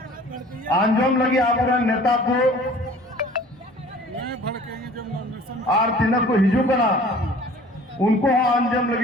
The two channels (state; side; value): normal; both; correlation 0.48